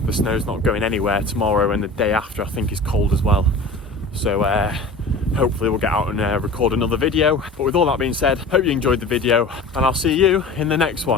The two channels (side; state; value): right; quieter; 3.1 dB